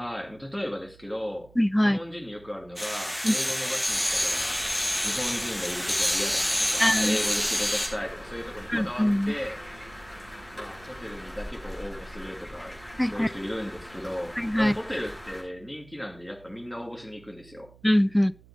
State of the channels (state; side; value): noise; right; hum, 25 dB below the sound